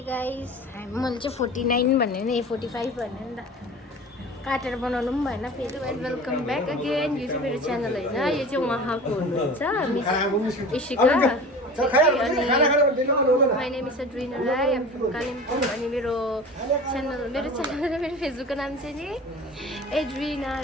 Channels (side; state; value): both; normal; correlation 0.37